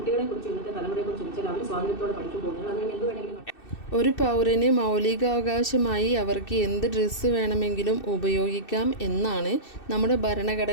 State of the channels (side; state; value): right; late; 2.6 ms